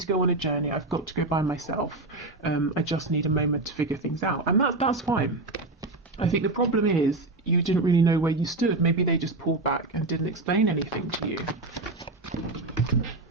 go on a journey, I've got to go by myself, I just need a moment to figure things out, and that's fine. I think the problem is you didn't really know where you stood. Maybe they just pulled back and didn't explain anything to you.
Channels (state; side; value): quieter; left; 3.0 dB